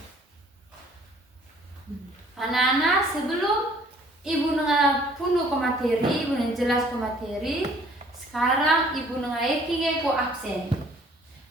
Anak-anak sebelum ibu nengah punuh ke materi, ibu nengah jelas ke materi. Sekarang ibu nengah eking ko absen.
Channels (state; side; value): normal; both; correlation 0.57